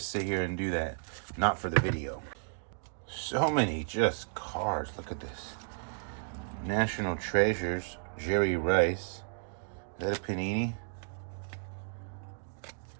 sit here and do that. Not for the video. So many just cards. Look at this. National Treasures, Jerry Rice. Is that a Panini?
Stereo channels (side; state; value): left; silent; digital silence